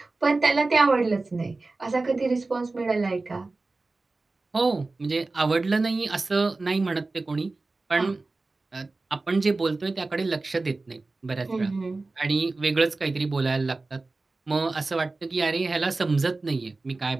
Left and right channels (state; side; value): quieter; left; 3.4 dB